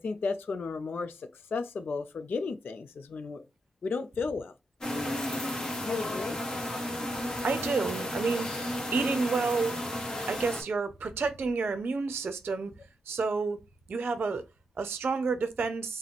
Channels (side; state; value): both; normal; correlation 0.82